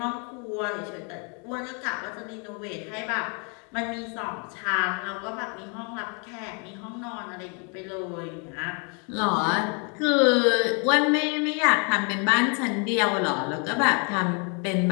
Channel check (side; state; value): right; quieter; 36.1 dB